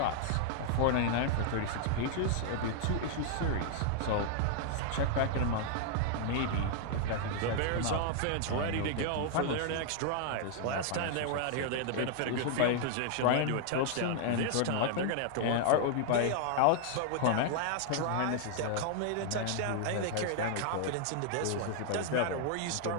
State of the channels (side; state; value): both; different; correlation 0.00